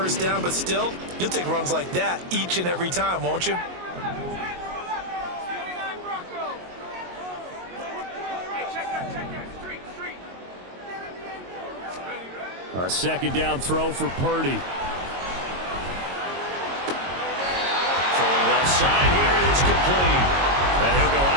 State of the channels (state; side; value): late; left; 22 ms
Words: down, but still, you'll take runs like that each and every time, won't you? A second down throw for Purdy. Throwing left side here, and it's complete. And he'll go